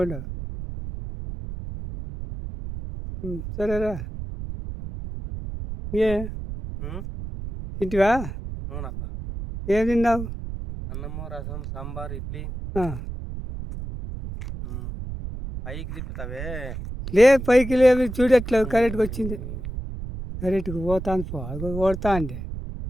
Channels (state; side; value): noise; right; rumble, 8 dB below the sound